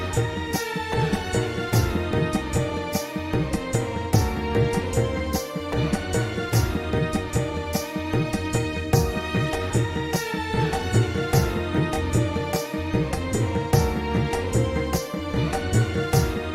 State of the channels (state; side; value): identical; both; correlation 1.00